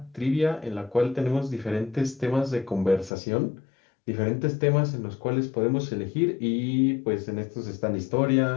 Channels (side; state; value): right; drops out; at 3.1 s